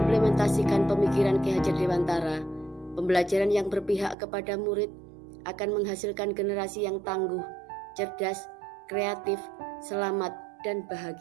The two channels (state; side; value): drops out; left; at 4.2 s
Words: pemikiran Ki Hajar Dewantara, pembelajaran yang berpihak kepada murid akan menghasilkan generasi yang tangguh, cerdas, kreatif, selamat, dan